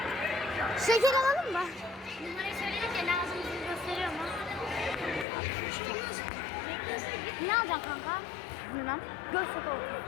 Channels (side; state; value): right; drops out; at 5.2 s